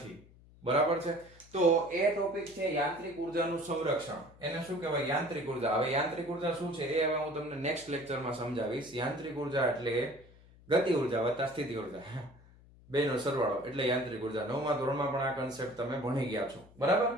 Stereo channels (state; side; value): noise; left; hum, 24 dB below the sound